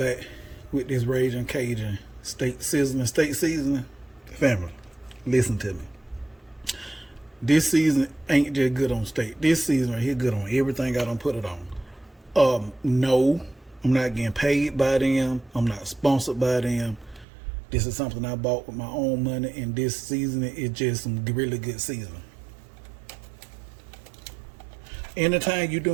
with this Raging Cajun steak seasoning. Family, listen to me. This season ain't just good on steak. This season right here good on everything I done put it on. No, I'm not getting paid by them. I'm not sponsored by them. This is something I bought with my own money, and this seasoning is just some really good seasoning. Anytime you're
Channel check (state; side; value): drops out; left; at 17.2 s